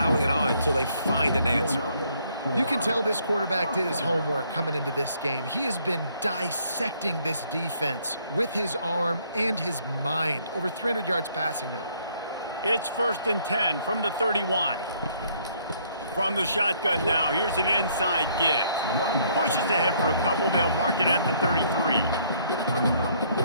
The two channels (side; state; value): both; inverted; correlation -0.66